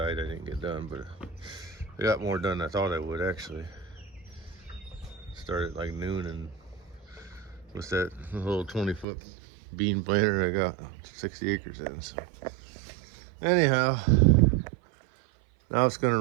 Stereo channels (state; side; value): drops out; left; at 9.1 s